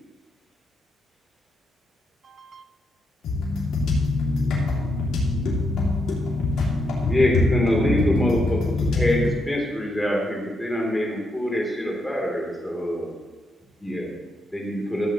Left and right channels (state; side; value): normal; both; correlation 0.80